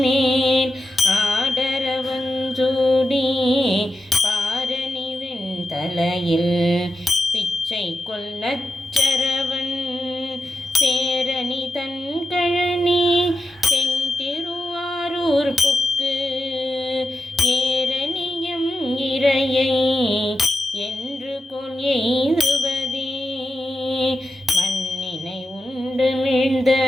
ஆடரவஞ்சூடி பாரணி வெண்தலையில் பிச்சை கொள் நச்சரவன் சேரணி தன் கழனி தென் திருவாரூர்ப்புக்கு ஏரணியம் இறையை என்று கொள் எய்துவதே. மண்ணினை உண்டு மிழ்ந்த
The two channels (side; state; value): both; normal; correlation 0.88